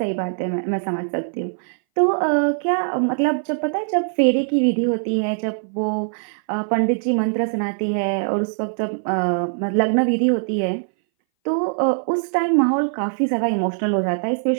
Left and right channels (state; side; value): silent; left; 61 dB below the other